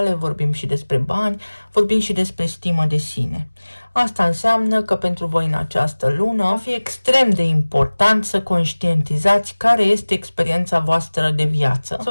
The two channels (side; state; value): both; inverted; correlation -1.00